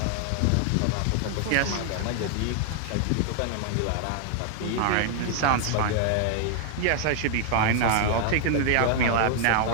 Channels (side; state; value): both; different; correlation 0.00